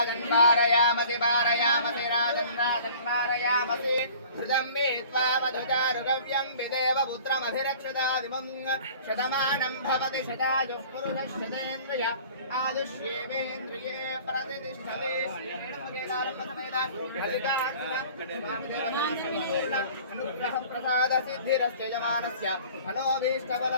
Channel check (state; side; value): inverted; both; correlation -0.47